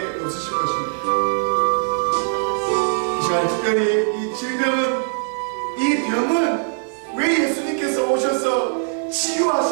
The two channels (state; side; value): silent; left; digital silence